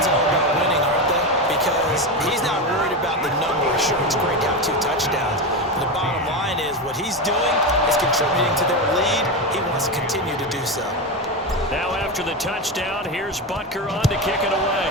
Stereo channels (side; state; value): both; normal; correlation 0.16